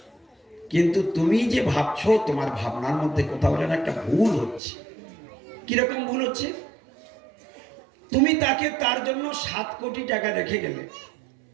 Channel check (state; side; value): drops out; left; at 4.6 s